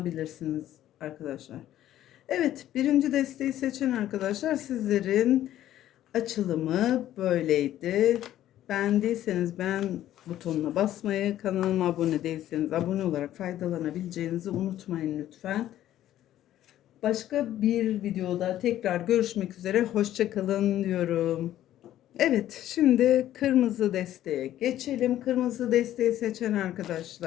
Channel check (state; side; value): quieter; right; 12.7 dB